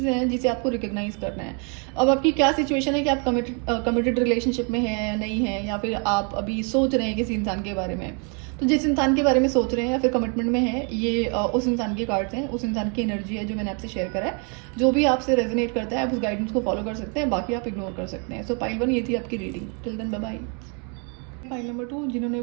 हैं जिसे आपको रिकग्नाइज करना है। अब आपकी क्या सिचुएशन है कि आप कमिटेड रिलेशनशिप में हैं या नहीं हैं, या फिर आप अभी सोच रहे हैं किसी इंसान के बारे में। तो जिस इंसान के बारे में सोच रहे हैं या फिर कमिटमेंट में है, ये उस इंसान के कार्ड्स हैं, उस इंसान की एनर्जी है जो मैंने आपसे शेयर करा है। जो भी आपसे रेजोनेट करता है आप उस गाइडेंस को फॉलो कर सकते हैं, बाकी आप इग्नोर कर सकते हैं। सो पाइल 1 ये थी आपकी रीडिंग। Till then bye bye. File number 2 जिन्होंने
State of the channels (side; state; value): left; quieter; 37.0 dB